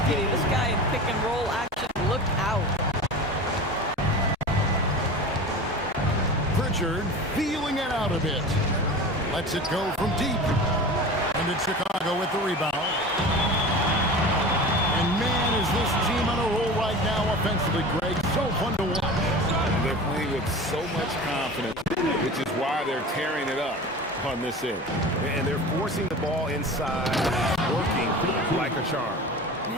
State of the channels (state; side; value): normal; both; correlation 0.35